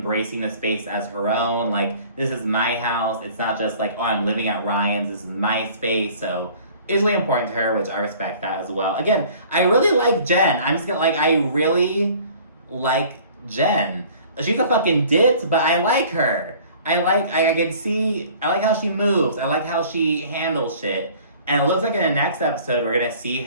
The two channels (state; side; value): inverted; both; correlation -0.50